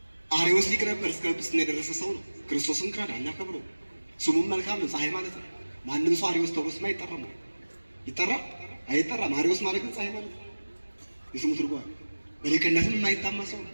አርዮስ ሊቅ ነበር፣ እስከ ጵጵስና የደረሰ ሰው ነው። ክርስቶስን ካደ፣ አናከብረው። ስሙም መልካም ነው፣ ፀሐይ ማለት ነው። ማንም ሰው አሪዎስ ተብሎ ስም አይጠራም። ይጠራል አይጠራም? አሪዎስ ማለት ግን ፀሐይ ማለት ነው። የስሙ ትርጓሜ በሊቅነትም የማይታማ ሰው ነው።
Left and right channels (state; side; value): inverted; both; correlation -1.00